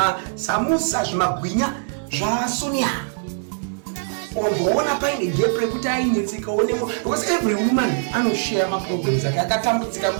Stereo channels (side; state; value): left; silent; digital silence